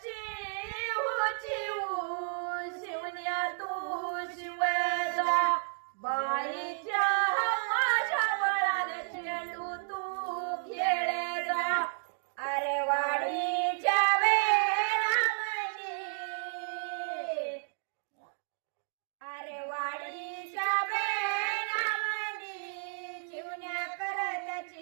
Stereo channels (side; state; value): left; silent; digital silence